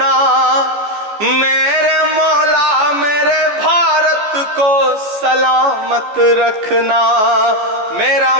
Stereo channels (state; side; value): late; left; 14 ms